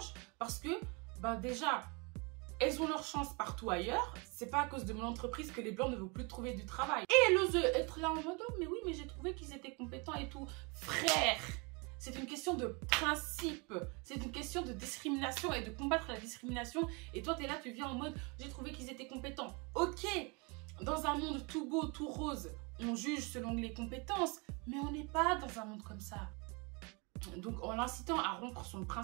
parce que, bah déjà, elles ont leur chance partout ailleurs. C'est pas à cause de mon entreprise que les blancs ne vont plus trouver du travail. Et elle ose être là en mode, oh, mais oui, mais j'ai trouvé qu'ils étaient compétents et tout. Frère, c'est une question de principe. C'est une question de discrimination et de combattre la discrimination. Et toi, t'es là, tu viens en mode, j'ai trouvé qu'ils étaient compétents. Ok, dans un monde tout beau, tout rose, on juge selon les compétences, mais on n'est pas dans un monde comme ça. Donc en l'incitant à rompre son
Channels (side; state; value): left; quieter; 30.5 dB